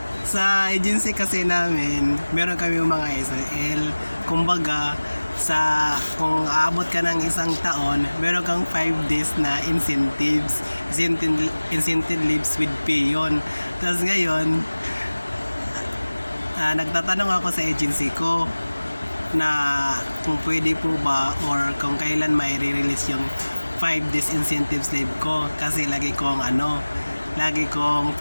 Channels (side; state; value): both; inverted; correlation -1.00